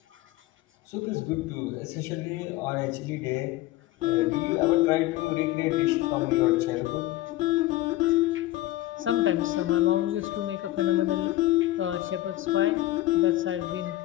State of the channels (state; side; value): quieter; right; 16.3 dB